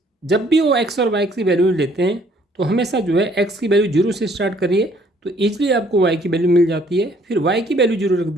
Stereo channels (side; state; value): both; normal; correlation 0.62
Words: जब भी वो एक्स और वाई की वैल्यू लेते हैं तो हमेशा जो है एक्स की वैल्यू 0 से स्टार्ट करिए तो ईजिली आपको वाई की वैल्यू मिल जाती है, फिर वाई की वैल्यू 0 रख